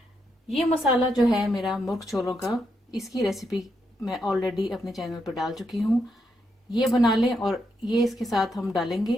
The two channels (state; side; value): normal; both; correlation 0.80